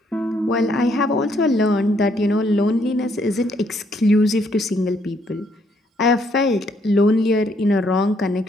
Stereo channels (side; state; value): both; normal; correlation 0.70